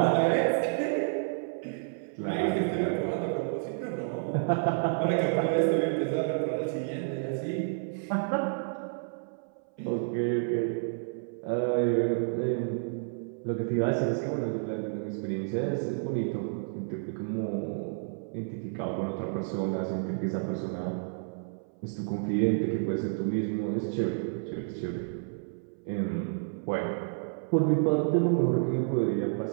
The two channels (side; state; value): left; silent; 57 dB below the other